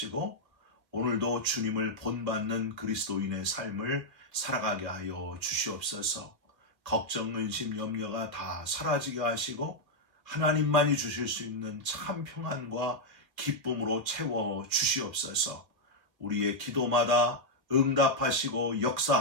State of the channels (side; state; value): left; late; 2.0 ms